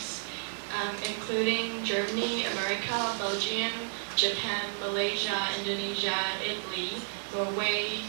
including Germany, America, Belgium, Japan, Malaysia, Indonesia, Italy, Norway,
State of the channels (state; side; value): silent; left; 57 dB below the other